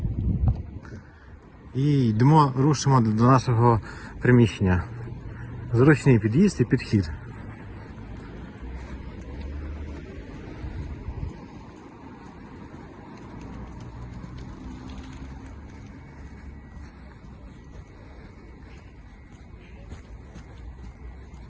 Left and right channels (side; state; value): both; identical; correlation 1.00